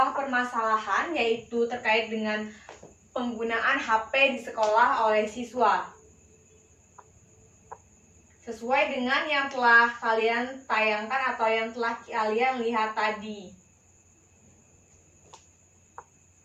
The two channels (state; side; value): identical; both; correlation 1.00